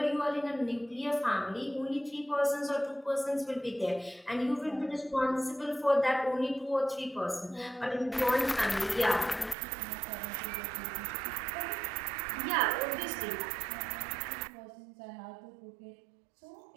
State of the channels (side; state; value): left; drops out; at 9.6 s